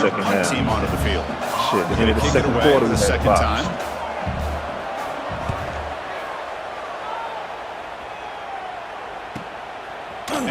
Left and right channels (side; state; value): both; identical; correlation 1.00